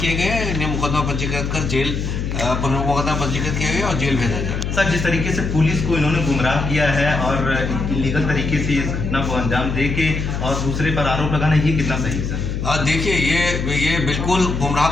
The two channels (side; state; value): left; noise; hum, 3 dB below the sound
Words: गए हैं। इन्हें मुकदमा पंजीकृत कर जेल मुकदमा पंजीकृत किया गया और जेल भेजा जाए। सर, जिस तरीके से पुलिस को इन्होंने गुमराह किया है और इलीगल तरीके से इस घटना को अंजाम दे के और दूसरे पर आरोप लगाना, ये कितना सही है सर? देखिए, ये बिल्कुल गुमराह